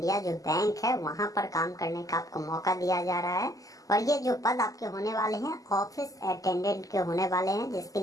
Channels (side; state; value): right; late; 0.17 ms